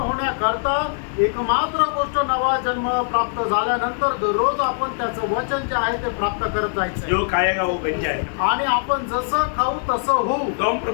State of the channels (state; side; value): silent; right; digital silence